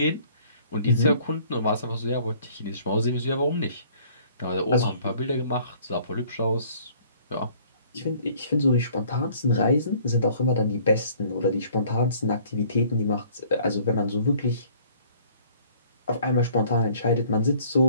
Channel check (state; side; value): inverted; both; correlation -0.56